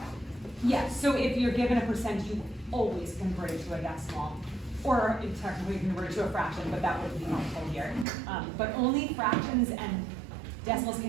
Yeah, so if you're given a percent, you always convert it to a decimal. Or technically convert it to a fraction, but that wouldn't be helpful here. But only fractions and decimals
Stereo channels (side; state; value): left; drops out; at 8.1 s